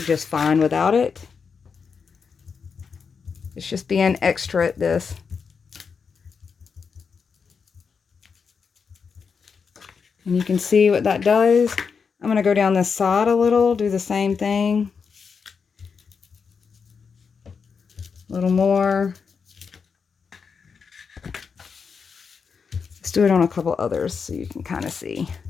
fine without it. It's just being extra at this. And you can see what that does. I'm going to go down this side a little, do the same thing. A little more. Let's do it on a couple others so you can kind of see.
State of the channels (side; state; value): right; quieter; 5.8 dB